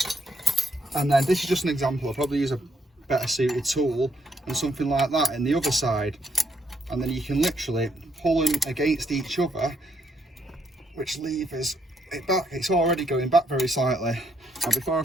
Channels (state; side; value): normal; both; correlation 0.73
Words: and then this is just an example. I'll probably use a better suited tool and something like that in the other side, and then you can literally pull them against each other, which levers it's already going back very slightly. Now before I